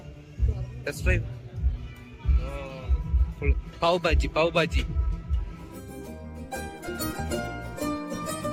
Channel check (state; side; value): identical; both; correlation 1.00